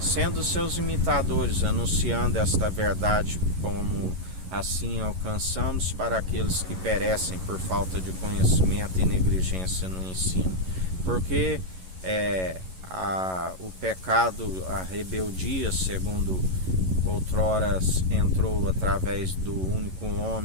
seus imitadores, anunciando esta verdade, como assim alcançamos para aqueles que perecem por falta de conhecimento e negligência no ensino. Porque o pecado, a rebeldia, segundo outrora entrou através do único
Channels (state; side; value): late; left; 11 ms